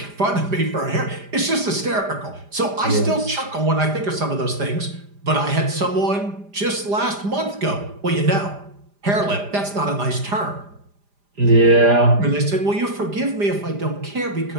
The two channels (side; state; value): left; late; 5.0 ms